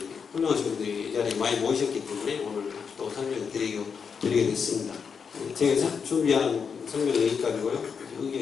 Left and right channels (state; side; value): quieter; right; 6.2 dB